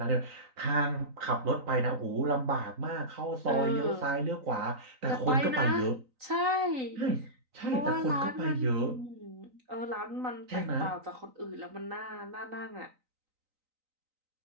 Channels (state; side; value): late; left; 3.9 ms